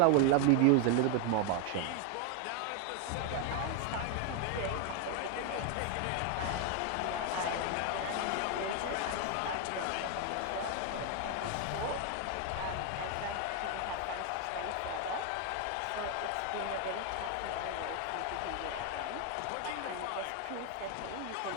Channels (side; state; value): both; different; correlation 0.01